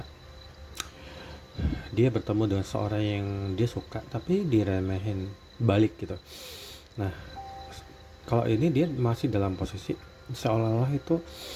dia bertemu dengan seorang yang dia suka tapi diremehin balik gitu. Nah, kalau ini dia masih dalam posisi seolah-olah itu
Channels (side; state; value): both; identical; correlation 1.00